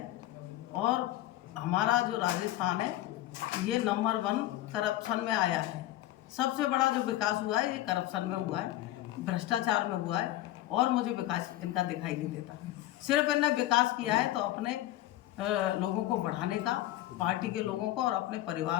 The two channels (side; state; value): right; quieter; 15.1 dB